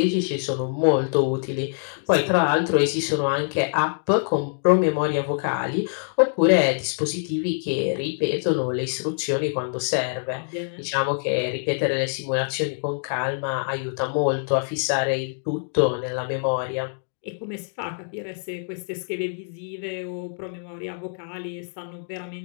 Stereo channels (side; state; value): right; silent; digital silence